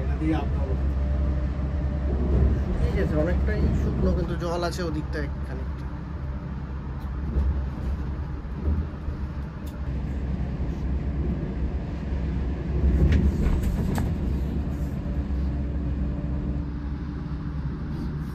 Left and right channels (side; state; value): both; identical; correlation 1.00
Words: এটা দিয়ে আপনার ঠিক আছে, অনেকটাই শুকনো, কিন্তু জল আছে ওদিকটা খানিকটা।